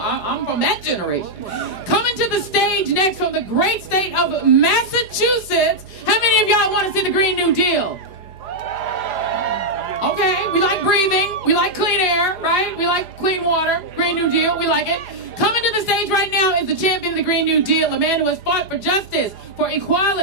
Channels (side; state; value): left; late; 4.9 ms